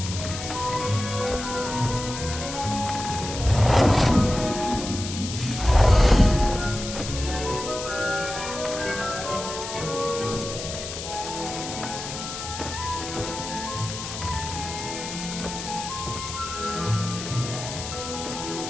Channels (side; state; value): left; noise; hiss, 8 dB below the sound